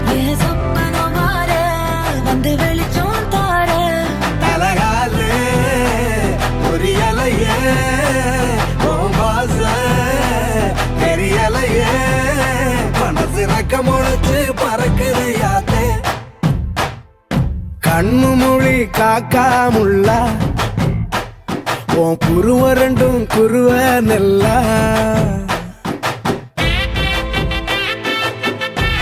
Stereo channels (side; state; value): both; identical; correlation 1.00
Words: என் சொப்பனம் மாற வந்து வெளிச்சம் தார தலகாலே பொரியலையே ஓம்பாச பெரியலையே மனசு ரக்க முளைச்சு பறக்குது யாத்தே கண்ணு மொழி காக்காமுள்ள உன் குருவ ரெண்டும் குருவ நெல்லா